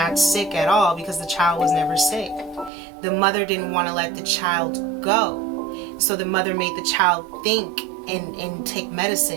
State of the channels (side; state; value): left; drops out; at 2.7 s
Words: sick at all, because the child was never sick. The mother didn't want to let the child go. So the mother made the child think and take